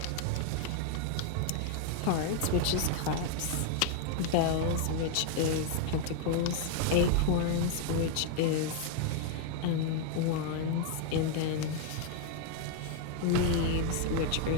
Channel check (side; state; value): both; different; correlation 0.00